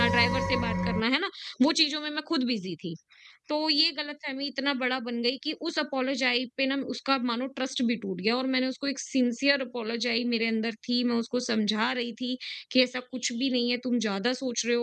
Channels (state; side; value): identical; both; correlation 1.00